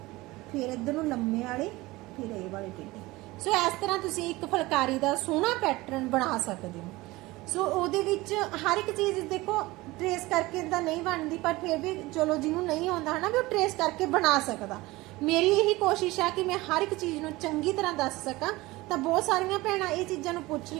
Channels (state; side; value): quieter; left; 20.3 dB